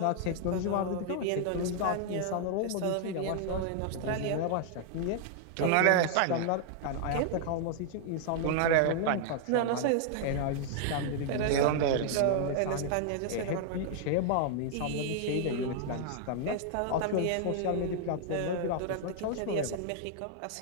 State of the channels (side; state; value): both; different; correlation 0.00